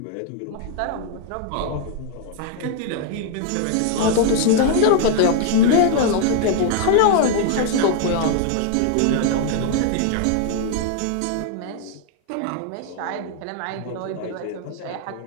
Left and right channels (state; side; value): different; both; correlation 0.00